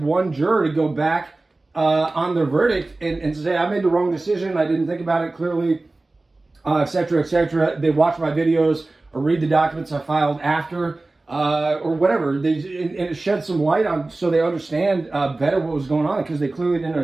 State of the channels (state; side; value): quieter; left; 3.1 dB